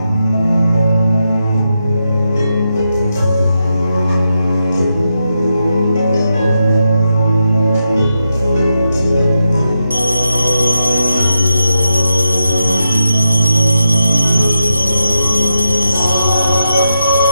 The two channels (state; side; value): inverted; both; correlation -0.86